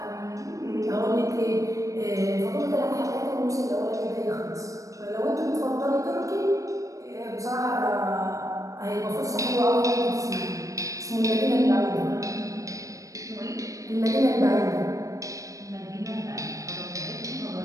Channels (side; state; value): left; late; 0.16 ms